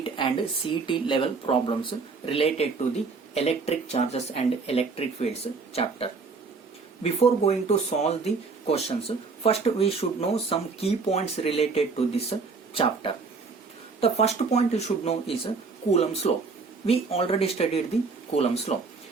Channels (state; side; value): quieter; left; 4.6 dB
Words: and CET level problems related to the electric charges and electric fields chapter. Before going to solve the questions, first we should know some key points related to this chapter. The first point you should know is Coulomb's law. We already studied the Coulomb's law.